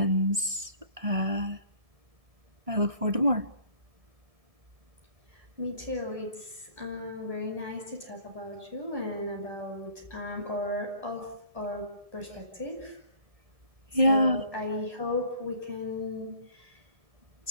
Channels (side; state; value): left; late; 1.6 ms